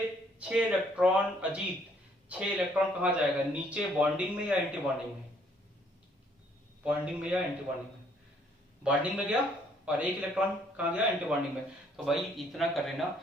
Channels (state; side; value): normal; both; correlation 0.65